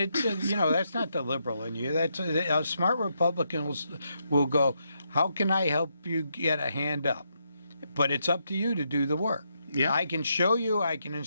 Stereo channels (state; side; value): inverted; both; correlation -0.80